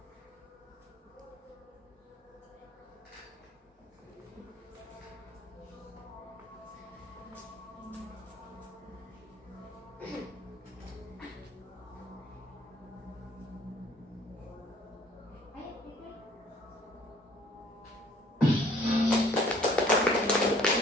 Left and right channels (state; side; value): normal; both; correlation 0.57